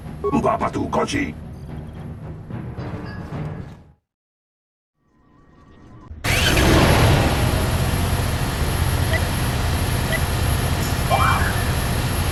Uba patu konchi.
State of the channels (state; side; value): identical; both; correlation 1.00